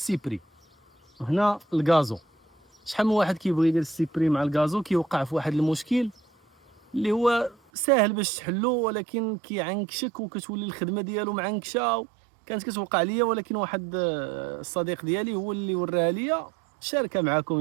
وهنا الغازو. شحال من واحد كيبغي يدير السيبري مع الغازو كيوقع في واحد المشكل اللي هو ساهل باش تحلو، ولكن كيعنكشك وكتولي الخدمه ديالو معنكشه. كانت كتوقع ليا، ولكن واحد الصديق ديالي هو اللي وراها ليا. شاركها معكم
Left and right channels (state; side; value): drops out; left; at 7.6 s